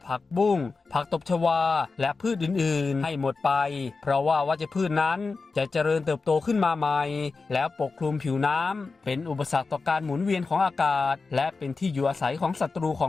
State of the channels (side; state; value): right; quieter; 4.2 dB